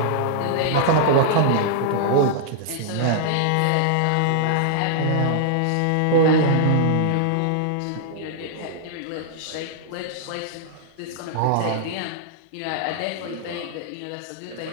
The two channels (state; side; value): different; both; correlation -0.01